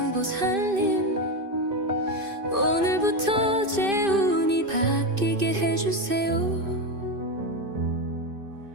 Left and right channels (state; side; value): late; left; 2.6 ms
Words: 오늘부터 제 운이 바뀌게 해주세요.